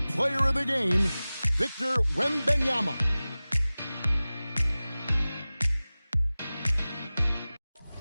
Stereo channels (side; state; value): both; inverted; correlation -0.98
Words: player of the game, Victor Wembanyama.